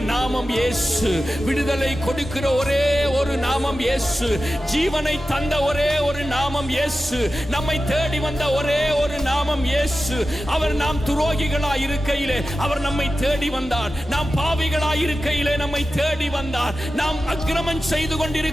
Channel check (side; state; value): both; normal; correlation 0.93